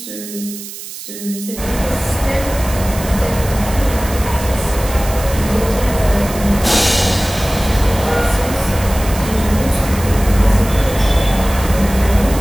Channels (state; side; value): noise; right; hiss, 12 dB below the sound